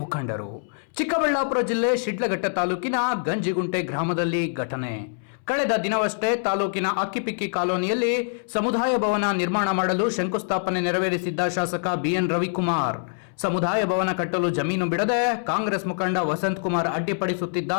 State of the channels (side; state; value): right; silent; 62 dB below the other